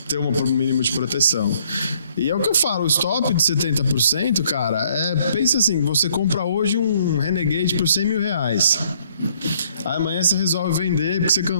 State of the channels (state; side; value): inverted; both; correlation -0.65